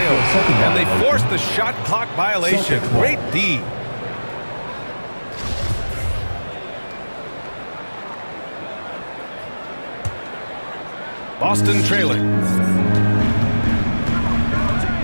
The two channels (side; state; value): both; inverted; correlation -1.00